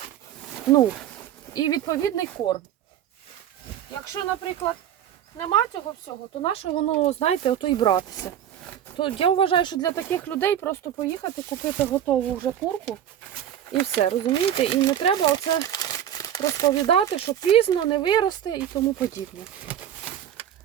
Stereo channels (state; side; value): quieter; left; 10.4 dB